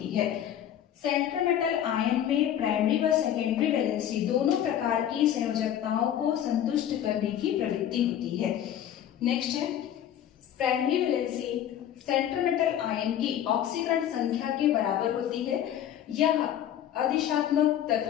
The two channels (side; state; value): right; quieter; 10.6 dB